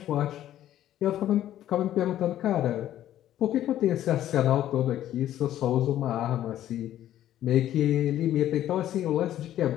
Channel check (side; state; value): right; quieter; 12.3 dB